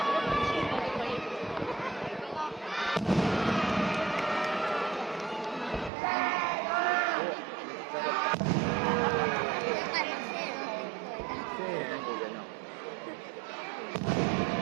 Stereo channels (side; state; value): left; drops out; at 5.9 s